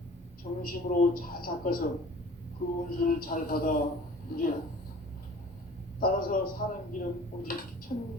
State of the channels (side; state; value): both; normal; correlation 0.46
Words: 정심으로 잘 닦아서 그 운수를 잘 받아 누리라. 따라서 사는 길은 오직